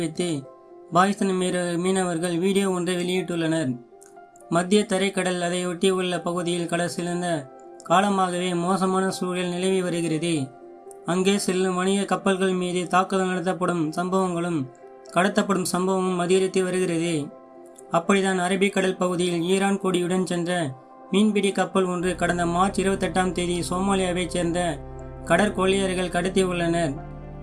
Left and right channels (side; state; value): both; identical; correlation 1.00